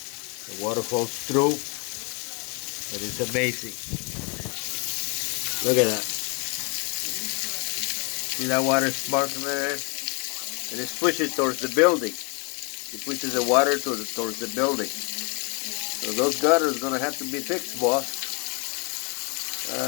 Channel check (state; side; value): quieter; right; 34.1 dB